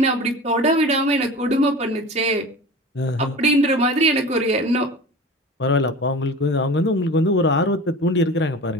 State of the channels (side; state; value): both; normal; correlation 0.35